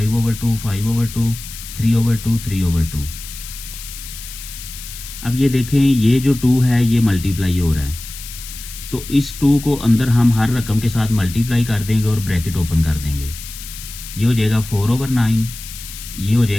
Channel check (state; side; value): noise; left; hiss, 13 dB below the sound